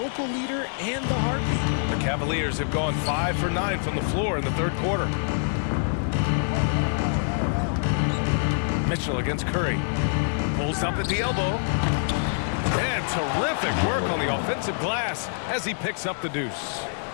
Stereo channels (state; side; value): silent; right; digital silence